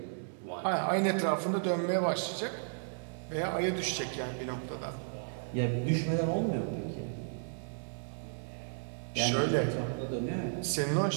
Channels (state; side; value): silent; left; digital silence